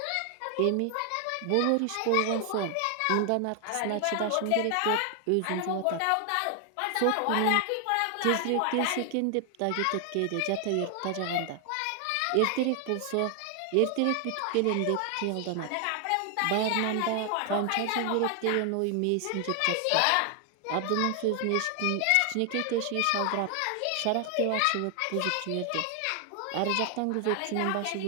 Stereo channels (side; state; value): both; different; correlation 0.00